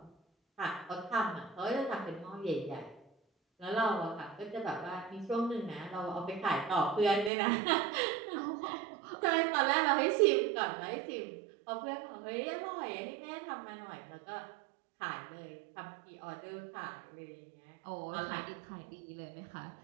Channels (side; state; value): left; drops out; at 7.3 s